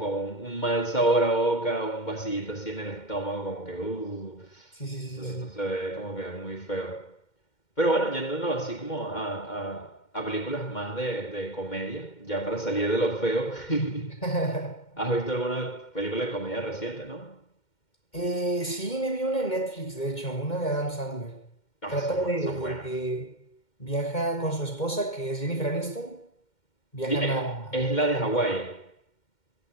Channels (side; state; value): right; late; 2.1 ms